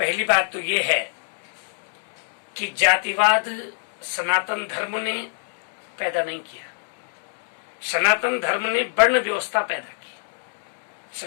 बात तो ये है कि जातिवाद सनातन धर्म ने पैदा नहीं किया। सनातन धर्म ने वर्ण व्यवस्था पैदा की।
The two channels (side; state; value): right; silent; digital silence